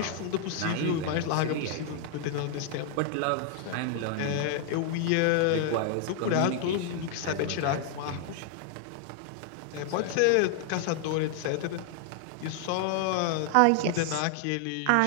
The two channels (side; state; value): both; different; correlation 0.00